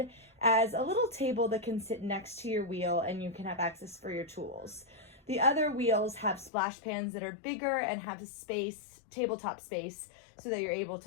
as a little table that can sit next to your wheel and you can have access for your tools. The other wheels have splash pans that are bigger and have space, tabletop space, so that you're able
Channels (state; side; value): drops out; right; at 6.5 s